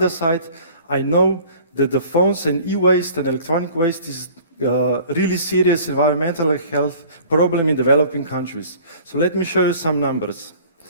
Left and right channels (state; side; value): inverted; both; correlation -0.48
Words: side, I know that the phones and e-waste and electronic waste is really serious environmental health problem in developing countries. So let me show you some numbers.